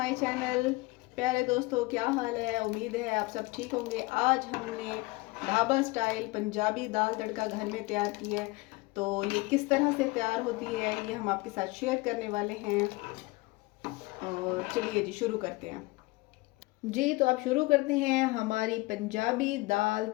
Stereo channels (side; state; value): right; quieter; 23.0 dB